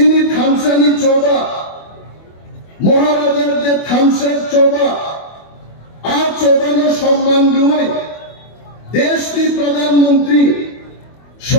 থামসানি চৌবা, মহারাজার যে থামসার চৌবা আর চৌবানো সম্মান দুই দেশটির প্রধানমন্ত্রী,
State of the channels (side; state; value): right; late; 25 ms